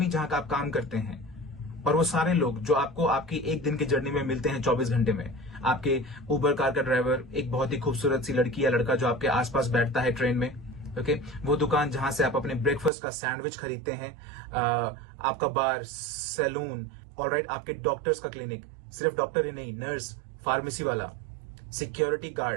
जहां का आप काम करते हैं, और वो सारे लोग जो आपको आपकी एक दिन की जर्नी में मिलते हैं 24 घंटे में, आपके उबर कार का ड्राइवर, एक बहुत ही खूबसूरत सी लड़की या लड़का जो आपके आसपास बैठता है ट्रेन में, ओके, वो दुकान जहां से आप अपने ब्रेकफास्ट का सैंडविच खरीदते हैं, आपका बार, सैलून, ऑलराइट, आपके डॉक्टर्स का क्लिनिक, सिर्फ डॉक्टर ही नहीं, नर्स, फार्मेसी वाला, security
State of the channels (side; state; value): left; drops out; at 12.9 s